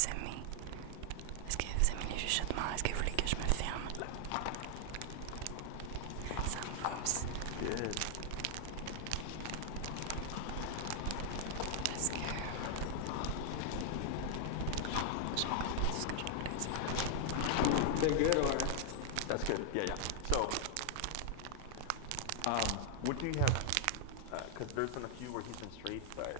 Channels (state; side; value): different; both; correlation 0.00